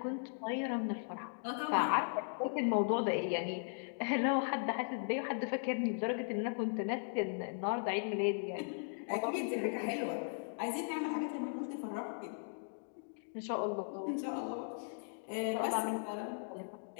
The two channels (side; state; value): right; silent; digital silence